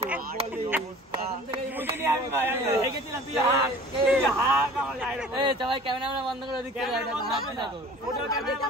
ক্যামেরা বন্ধ করে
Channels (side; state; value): both; normal; correlation 0.45